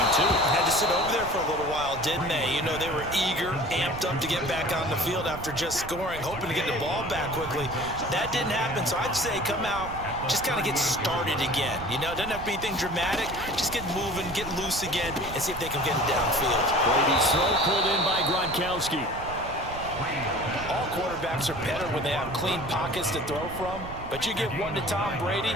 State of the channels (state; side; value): noise; right; rumble, 12 dB below the sound